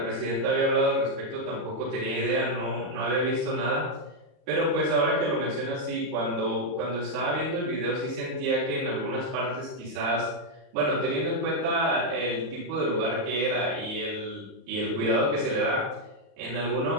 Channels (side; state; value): left; late; 35 ms